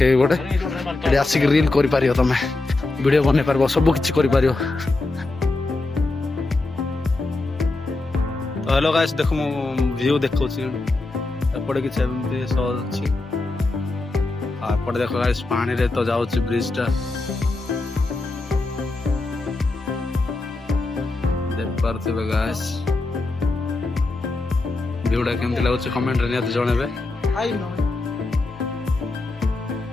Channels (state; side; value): quieter; right; 3.2 dB